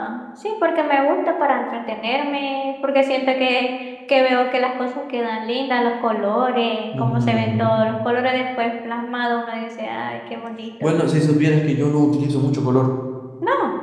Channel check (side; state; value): both; identical; correlation 1.00